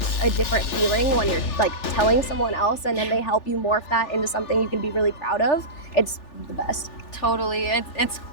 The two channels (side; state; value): right; late; 3.4 ms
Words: a different feeling when you're like telling someone else and then they help you morph that into something you can be really proud of. It's the best. Totally. It's